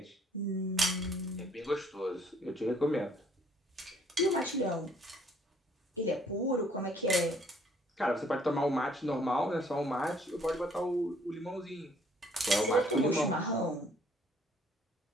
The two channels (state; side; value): normal; both; correlation 0.62